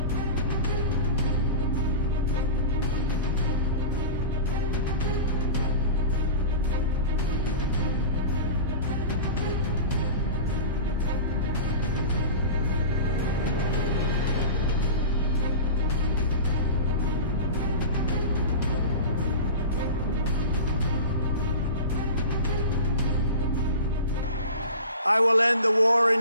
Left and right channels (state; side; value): inverted; both; correlation -0.31